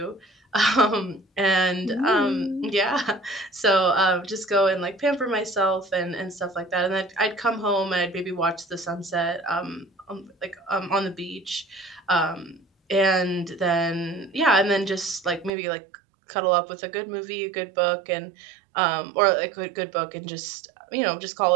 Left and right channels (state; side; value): drops out; left; at 15.5 s